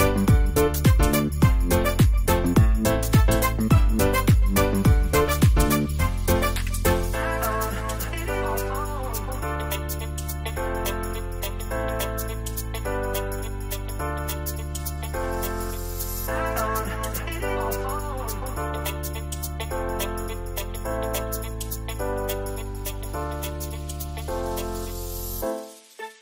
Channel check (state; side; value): identical; both; correlation 1.00